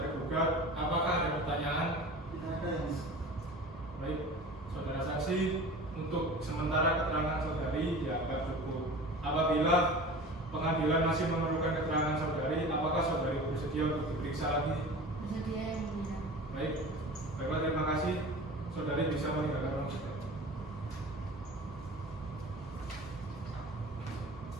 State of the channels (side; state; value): both; normal; correlation 0.37